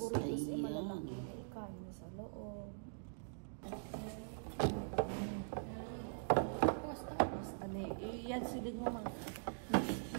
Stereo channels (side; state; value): left; silent; digital silence